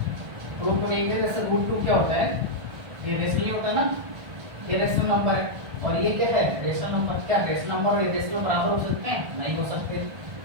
प्रूफ में देखेंगे जैसे रूट 2 क्या होता है, ये रेशनल ही होता है ना, ये रेशनल नंबर है। और ये क्या है, रेशनल नंबर। क्या रेशनल नंबर और इरेशनल बराबर हो सकते हैं, नहीं हो सकते।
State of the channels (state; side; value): late; left; 1.5 ms